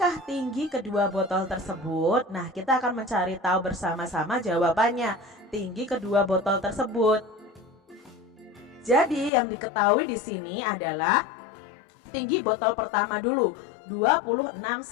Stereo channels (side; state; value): right; drops out; at 9.3 s